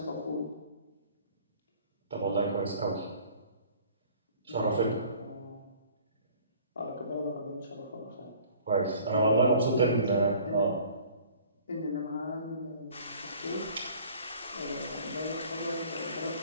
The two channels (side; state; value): both; inverted; correlation -0.51